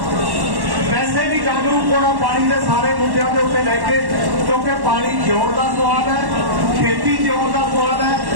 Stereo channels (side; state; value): left; late; 1.1 ms